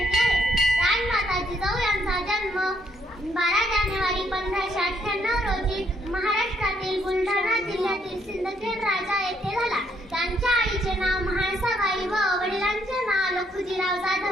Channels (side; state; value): both; normal; correlation 0.71